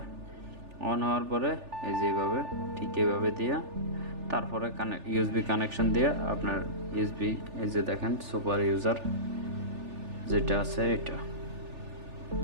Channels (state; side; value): late; left; 3.4 ms